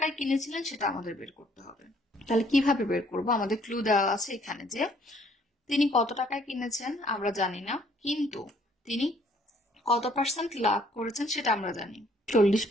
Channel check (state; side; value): normal; both; correlation 0.63